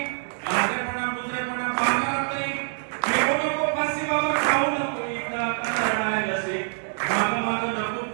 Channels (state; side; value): silent; left; digital silence